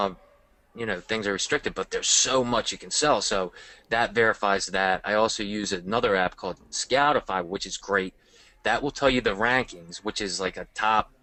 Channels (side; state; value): both; identical; correlation 1.00